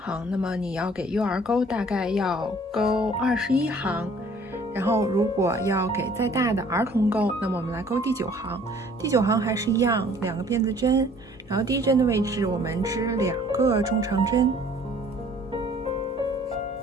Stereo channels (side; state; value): both; normal; correlation 0.55